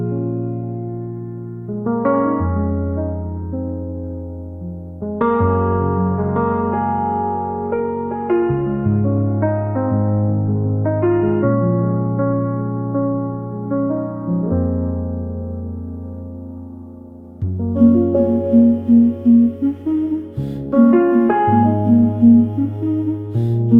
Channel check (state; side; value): identical; both; correlation 1.00